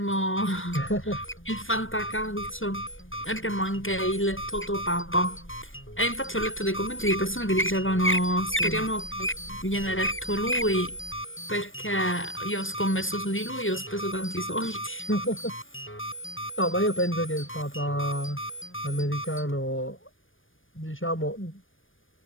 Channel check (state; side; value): late; right; 0.58 ms